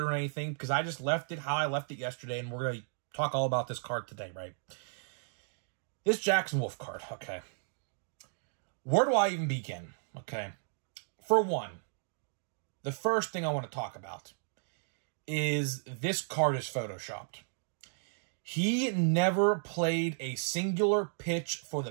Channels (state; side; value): silent; left; digital silence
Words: or anything, because I just left it how I left it yesterday, and we're going to talk all about this card today, right? This Jackson Wolf card, okay. Where do I even begin, okay? For one, the first thing I want to talk about is this card is photoshopped. He never played a singular pitch for the